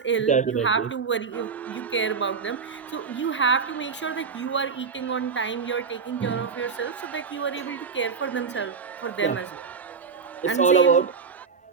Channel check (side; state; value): left; quieter; 5.6 dB